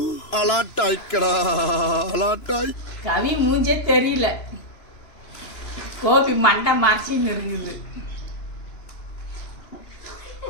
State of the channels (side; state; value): right; late; 3.0 ms